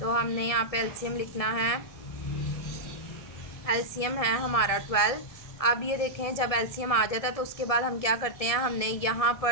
तो हमने यहाँ पे एलसीएम लिखना है, एलसीएम है हमारा 12। अब ये देखें जब एलसीएम आ जाता है तो उसके बाद हम क्या करते हैं, हमने यहाँ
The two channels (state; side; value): late; right; 1.7 ms